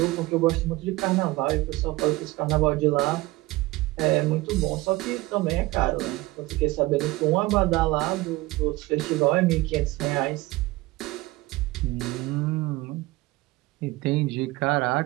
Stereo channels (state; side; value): quieter; left; 20.3 dB